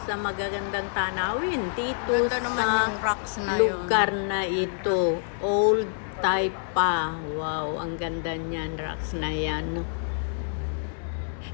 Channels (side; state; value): right; silent; 60 dB below the other